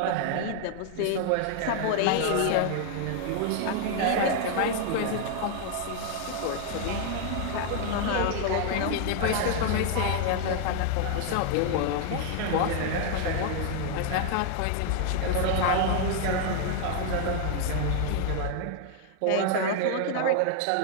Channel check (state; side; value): different; both; correlation 0.00